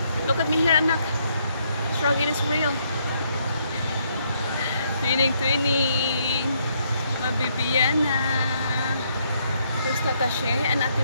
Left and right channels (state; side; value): inverted; both; correlation -0.72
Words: look at me here, anak. Struggle is real. Twinning, twinning. Mabibiana. There's Tata Shay and Ate